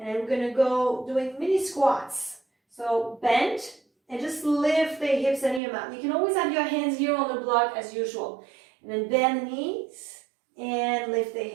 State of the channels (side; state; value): left; drops out; at 5.6 s